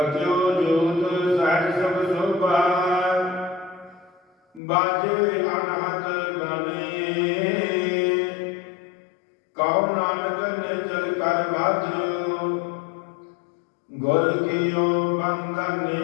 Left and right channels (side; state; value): right; drops out; at 4.6 s